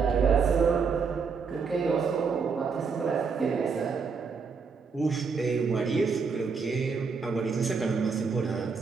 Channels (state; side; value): quieter; left; 5.3 dB